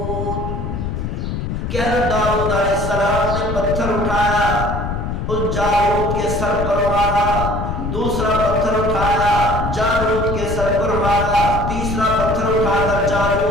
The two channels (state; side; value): noise; left; rumble, 4 dB below the sound